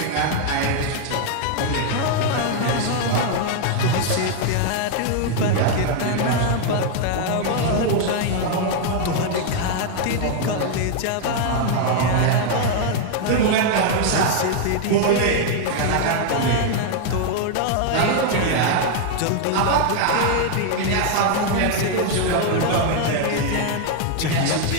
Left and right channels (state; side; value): different; both; correlation 0.00